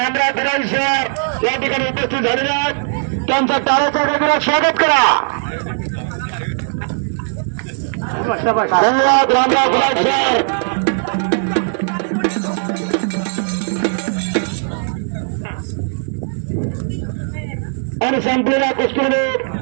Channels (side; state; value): left; silent; digital silence